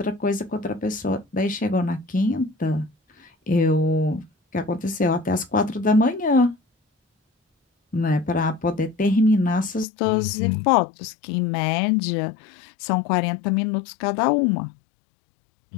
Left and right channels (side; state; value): right; drops out; at 9.9 s